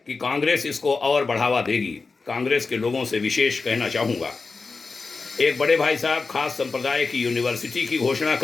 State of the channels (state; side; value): quieter; right; 4.2 dB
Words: कि कांग्रेस इसको और बढ़ावा देगी। कांग्रेस के लोगों से विशेष कहना चाहूँगा, एक बड़े भाई साहब खास संप्रदाय की यूनिवर्सिटी की घोषणा